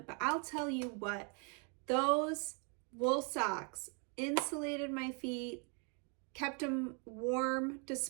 but I'll tell you what, those wool socks insulated my feet, kept them warm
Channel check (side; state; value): left; quieter; 37.0 dB